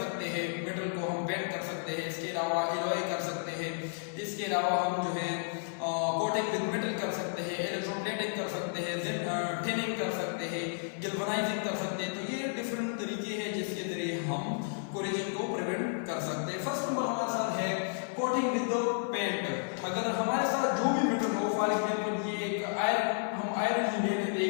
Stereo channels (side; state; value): right; silent; 55 dB below the other